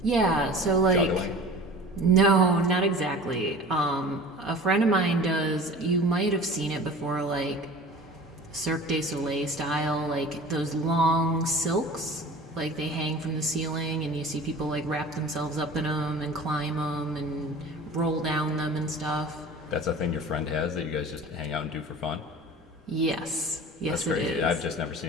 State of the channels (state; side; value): normal; both; correlation 0.40